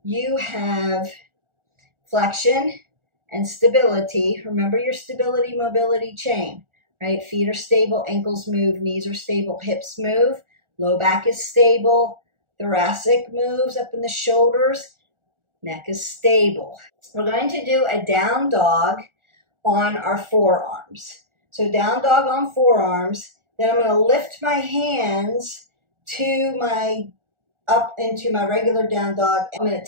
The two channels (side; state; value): left; late; 1.4 ms